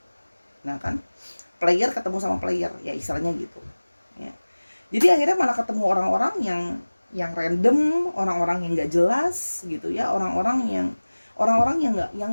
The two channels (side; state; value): both; inverted; correlation -1.00